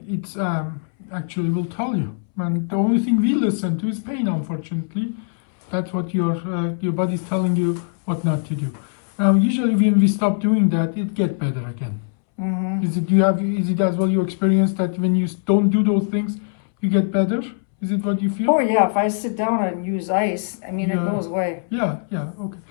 it's actually will tell you. And the only thing we listen to is pain, unfortunately. That's what your body is telling you what not to do. Now, usually when we stop doing that, it gets better again. Mm-hmm. Is it as well your experience that when you don't do those things, you get better? Is it what you feel? Oh yeah, if I sit down and use ice, I mean, Yeah. it goes away. Yeah, okay.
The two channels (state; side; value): silent; right; 65 dB below the other